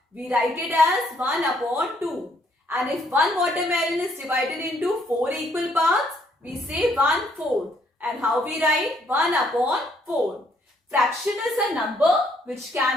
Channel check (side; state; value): both; normal; correlation 0.68